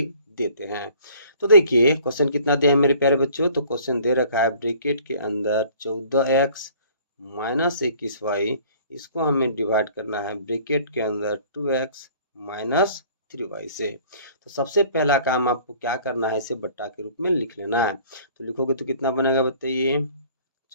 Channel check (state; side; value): inverted; both; correlation -0.53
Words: देते हैं। तो देखिए क्वेश्चन कितना दिया है मेरे प्यारे बच्चों, तो क्वेश्चन दे रखा है ब्रैकेट के अंदर 14x माइनस 21y, इसको हमें डिवाइड करना है ब्रैकेट के अंदर 2x माइनस 3y से। तो सबसे पहला काम आपको क्या करना है, इसे बट्टा के रूप में लिख लेना है। तो लिखोगे तो कितना बनेगा बताइए,